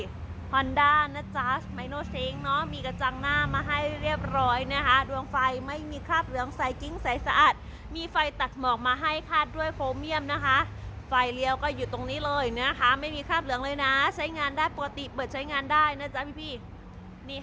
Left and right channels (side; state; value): both; identical; correlation 1.00